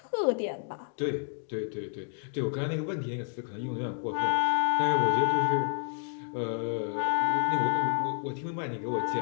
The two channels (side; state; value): right; silent; 58 dB below the other